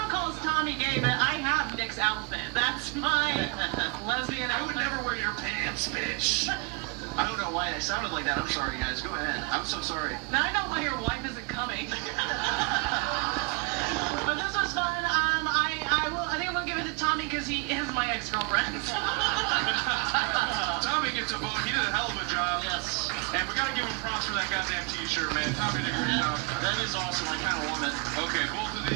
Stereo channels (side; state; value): left; quieter; 31.0 dB